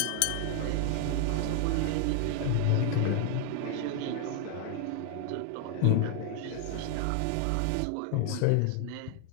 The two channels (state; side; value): different; both; correlation 0.00